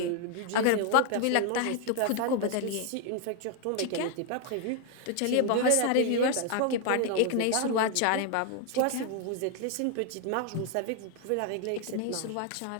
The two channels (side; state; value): both; different; correlation 0.00